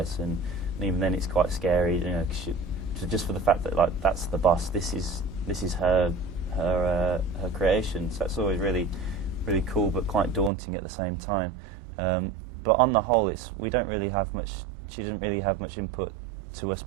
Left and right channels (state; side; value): drops out; left; at 10.5 s